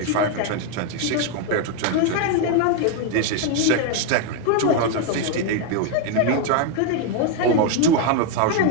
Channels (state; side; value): different; both; correlation 0.01